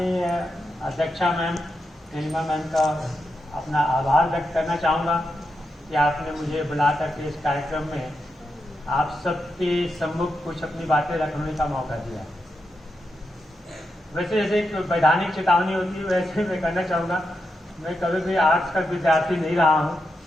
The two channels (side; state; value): both; normal; correlation 0.86